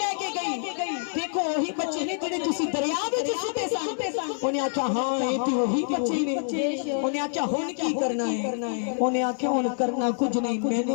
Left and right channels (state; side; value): silent; right; digital silence